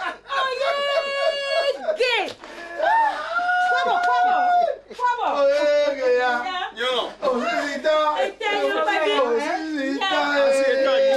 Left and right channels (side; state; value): both; identical; correlation 1.00